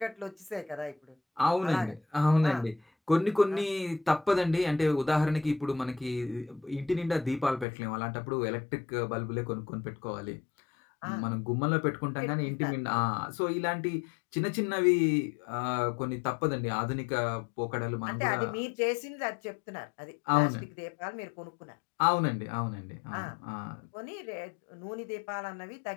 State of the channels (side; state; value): right; drops out; at 7.7 s